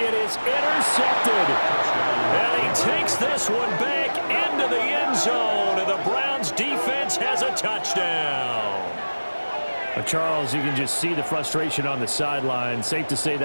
is intercepted. And he takes this one back into the end zone, and the Browns defense has a touchdown. Charles, you can just see the frustration on the sideline. Safe to say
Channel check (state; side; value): inverted; both; correlation -1.00